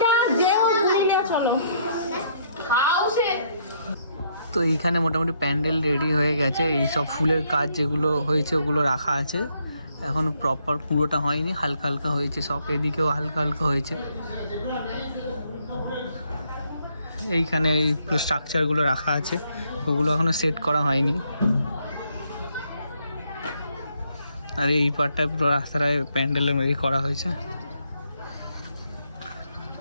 তো এইখানে মোটামুটি প্যান্ডেল রেডি হয়ে গেছে, এই সব ফুলের কাজ যেগুলো হয়েছে ওগুলো রাখা আছে, এখনো প্রপার পুরোটা হয়নি, হালকা হালকা হয়েছে সব, এদিকেও হালকা হালকা হয়েছে। এইখানে এই পুরো স্ট্রাকচারগুলো রাখা আছে, ওগুলো এখনো সেট করা হয়নি। আর এই পার্টটায় পুরো রাস্তাটায় প্যান্ডেলের মধ্যে করা হয়েছে।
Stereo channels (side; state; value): both; inverted; correlation -0.71